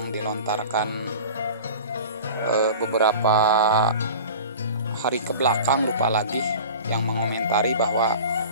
dilontarkan beberapa hari ke belakang, lupa lagi, yang mengomentari bahwa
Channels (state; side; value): inverted; both; correlation -0.38